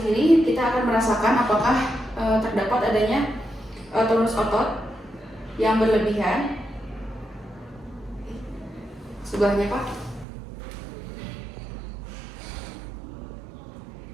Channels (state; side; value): drops out; left; at 10.2 s